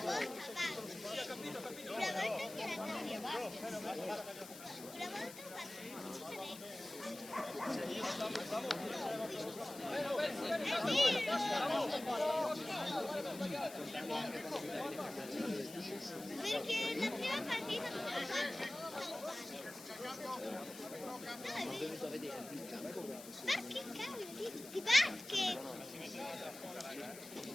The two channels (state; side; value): noise; left; hiss, 14 dB below the sound